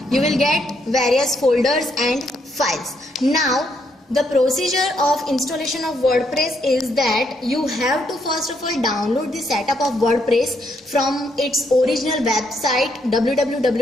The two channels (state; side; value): normal; both; correlation 0.75